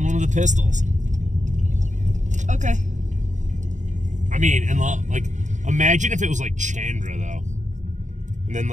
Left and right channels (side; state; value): left; late; 0.35 ms